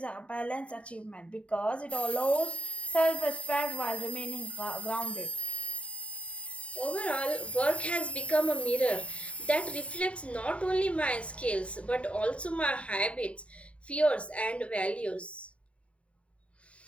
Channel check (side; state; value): right; late; 0.063 ms